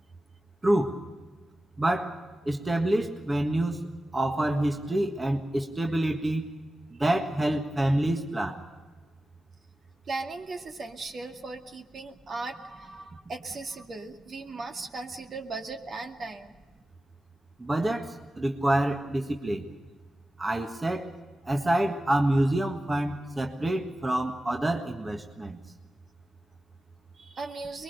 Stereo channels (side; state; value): both; normal; correlation 0.94